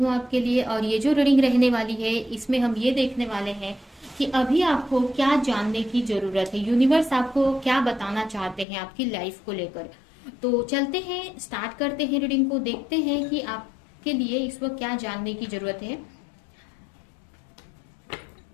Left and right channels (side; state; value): right; drops out; at 8.7 s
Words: आपके लिए, और ये जो रीडिंग रहने वाली है इसमें हम ये देखने वाले हैं कि अभी आपको क्या जानने की जरूरत है, यूनिवर्स आपको क्या बताना चाहते हैं आपकी लाइफ को लेकर। तो चलते हैं, स्टार्ट करते हैं रीडिंग को, देखते हैं कि आपके लिए इस वक्त क्या जानने की जरूरत है।